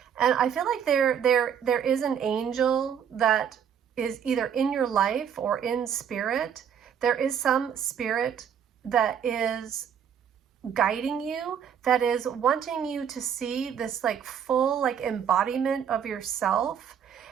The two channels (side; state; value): left; quieter; 8.2 dB